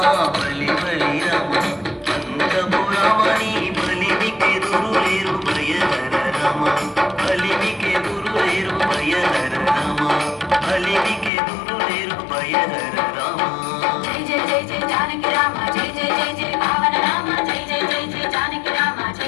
బలి బలి రామ అంతపురమణి బలిమికెదురు లేరు బయదర రమ బలిమికెదురు లేరు బయదర రమ బలిమికెదురు లేరు బయదర రమ జై జై జై జై జానకి రామ జై జై జై జై పావన నామ జై జై జై జై జానకి రామ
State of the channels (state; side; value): drops out; right; at 11.3 s